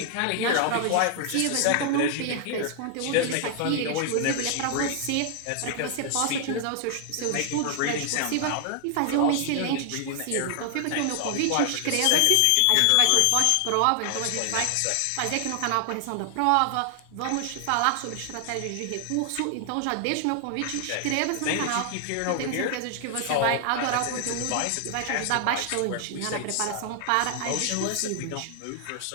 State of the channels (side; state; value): both; different; correlation 0.00